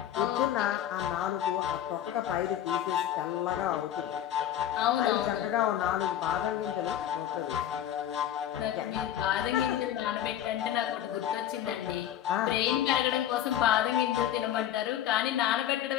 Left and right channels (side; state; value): right; quieter; 11.2 dB